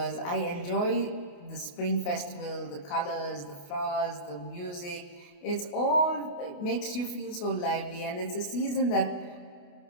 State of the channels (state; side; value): late; right; 28 ms